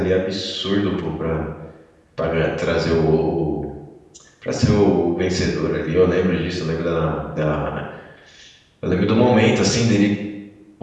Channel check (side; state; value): both; identical; correlation 1.00